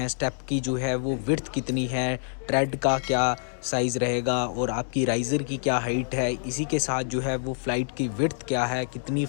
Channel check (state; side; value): silent; right; 60 dB below the other